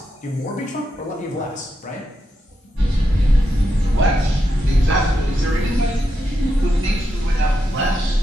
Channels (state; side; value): normal; both; correlation 0.85